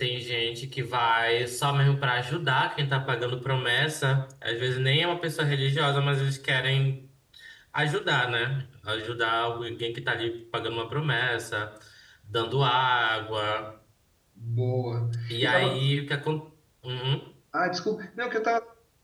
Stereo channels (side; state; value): both; identical; correlation 1.00